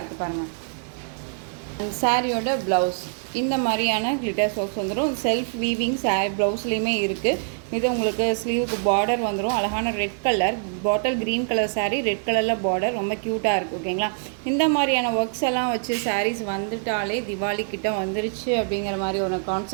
பாருங்கள். அண்ட் சாரியோட ப்ளவுஸ் இந்த மாதிரியான கிளிட்டர் ஒர்க்ஸ் வந்துடும். செல்ஃப் வீவிங் சாரி ப்ளவுஸ்லேயுமே இருக்குது. இது உங்களுக்கு ஸ்லீவுக்கு பார்டர் வந்துடும். அழகான red colour bottle green colour sari, red கலரில் பார்டர், ரொம்ப க்யூட்டாக இருக்குது. ஓகேங்களா, இந்த மாதிரியான ஒர்க்ஸ் எல்லாம் வச்சு சாரீஸ் வந்துட்டாலே திவாலி கிட்ட வந்துருச்சு அப்படிங்கிற மாதிரி ஒரு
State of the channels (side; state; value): left; silent; 62 dB below the other